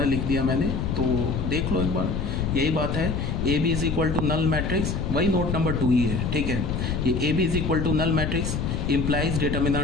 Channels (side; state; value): left; noise; rumble, 1 dB below the sound